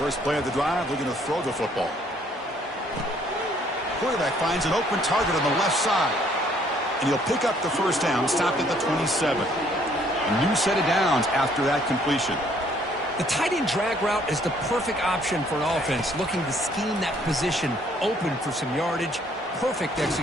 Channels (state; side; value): normal; both; correlation 0.63